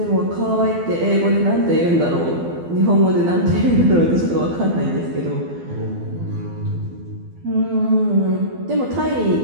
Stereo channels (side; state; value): left; late; 12 ms